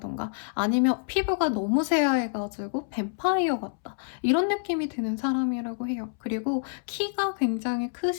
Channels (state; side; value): silent; right; 60 dB below the other